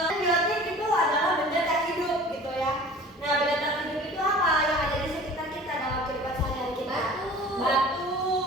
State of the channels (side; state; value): both; normal; correlation 0.44